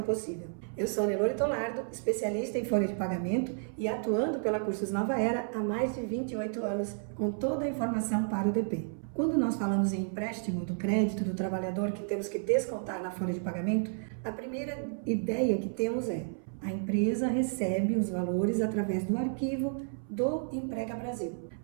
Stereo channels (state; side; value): silent; left; 57 dB below the other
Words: possível. Eu sou Nelore Tolardo, especialista em folha de pagamento e atuando pela Cursos Nova Era há mais de 28 anos com toda a informação para o DP. Quando nós falamos em empréstimo do crédito do trabalhador que temos que descontar na folha de pagamento, a primeira ideia que temos é: a empresa recebe os valores através do arquivo do Emprega Brasil.